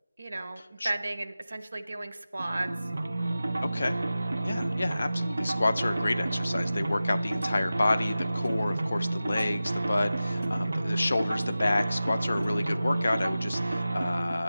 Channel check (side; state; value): both; inverted; correlation -0.95